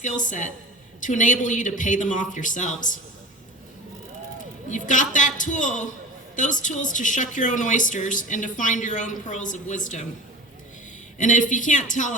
set to enable you to pay them off yourselves. You've got that tool, those tools to shuck your own oysters and to find your own pearls of wisdom. And if you can't tell,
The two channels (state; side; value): normal; both; correlation 0.35